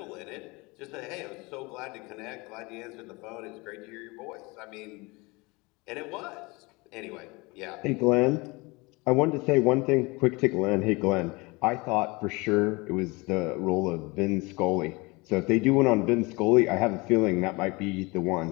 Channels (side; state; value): right; quieter; 25.3 dB